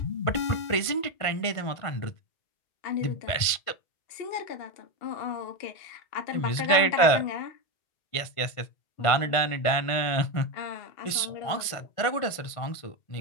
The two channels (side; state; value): right; late; 1.5 ms